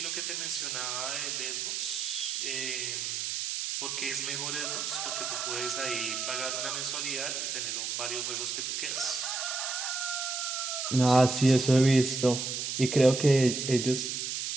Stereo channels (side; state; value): right; noise; hiss, 2 dB below the sound